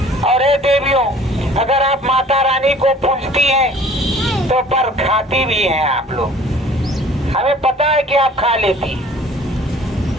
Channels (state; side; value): normal; both; correlation 0.50